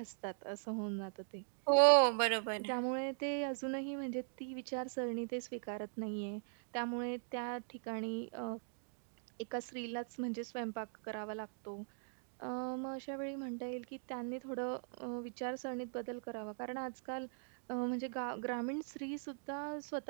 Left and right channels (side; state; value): left; silent; digital silence